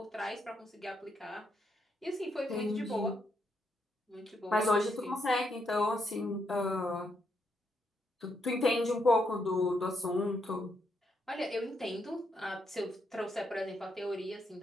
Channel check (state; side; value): normal; both; correlation 0.78